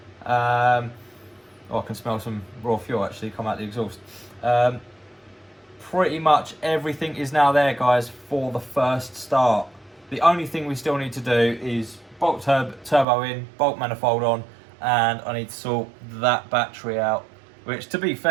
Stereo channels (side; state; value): left; drops out; at 13.1 s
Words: I can smell some raw fuel actually come out the exhaust. Pretty much everything is now there, guys, for the first start. The only thing we still need to do is bolt turbo in, bolt manifold on, and I need to sort that battery out. Which, to be